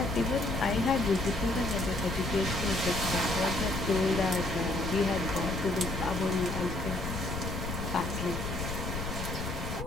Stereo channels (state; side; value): noise; left; rumble, 5 dB below the sound